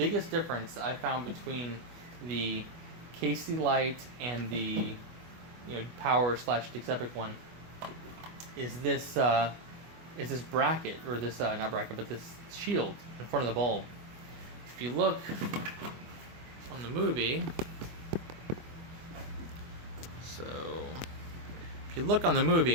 difference I found between the KC light and the power / Dix Epic one is this bracket, or this not bracket, but this shield in front of the bulb. If you look on the movie, so if you look on the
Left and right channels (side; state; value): left; late; 25 ms